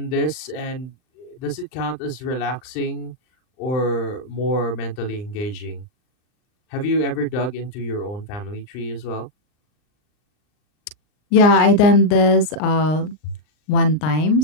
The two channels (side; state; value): right; late; 39 ms